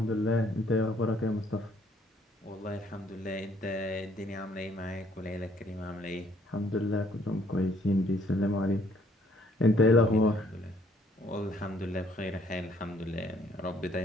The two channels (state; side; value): normal; both; correlation 0.64